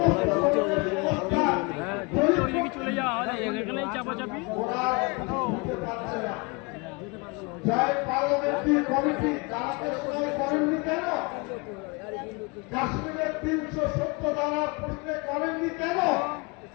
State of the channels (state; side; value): quieter; right; 28.9 dB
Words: হ্যাঁ ঘুরতে ওইদিকে চলে যাও এখানেই চাপাচাপি কাশ্মীরের 370 ধারা প্রশ্নে করেননি কেন?